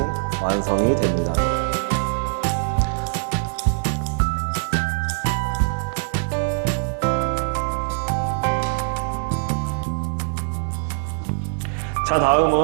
완성이 됩니다. 자,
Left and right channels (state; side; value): silent; left; digital silence